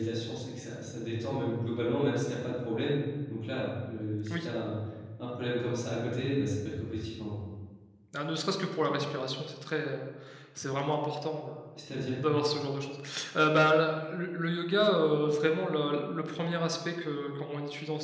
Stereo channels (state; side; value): identical; both; correlation 1.00